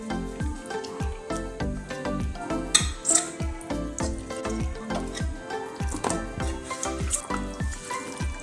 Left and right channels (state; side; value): identical; both; correlation 1.00